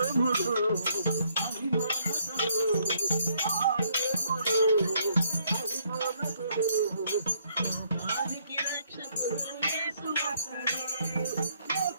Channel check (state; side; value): inverted; both; correlation -0.69